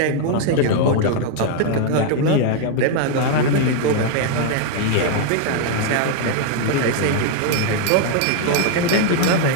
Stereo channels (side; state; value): both; different; correlation 0.00